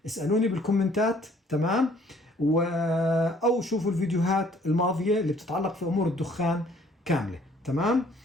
اسألوني بالكومنتات. تمام؟ أو شوفوا الفيديوهات الماضية اللي بتتعلق في أمور الدخان كاملة. تمام؟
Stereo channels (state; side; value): normal; both; correlation 0.59